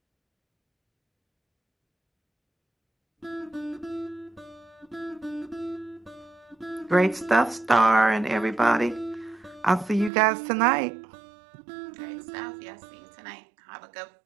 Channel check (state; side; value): drops out; left; at 10.1 s